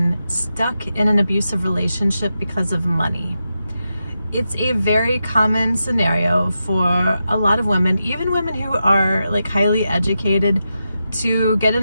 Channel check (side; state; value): both; inverted; correlation -0.89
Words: stuck in an abusive relationship because of money. It's a very common scenario for a lot of women, even women who are like highly educated, to get in